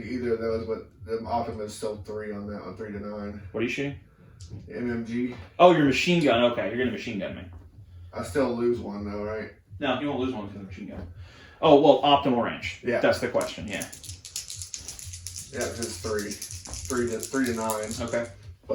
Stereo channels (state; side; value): identical; both; correlation 1.00